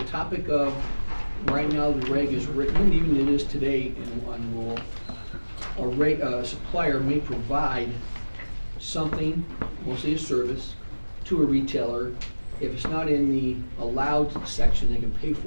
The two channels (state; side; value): inverted; both; correlation -1.00